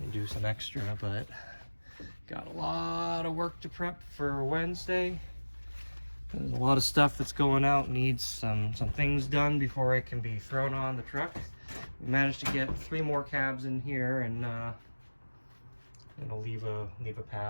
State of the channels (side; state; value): both; inverted; correlation -1.00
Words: do some extra, but got a lot of work to prep for Wednesday. There's a lot of stuff that's going out, needs some things done before it can be thrown on the truck. We managed to get 3 more cabs in here, and leave a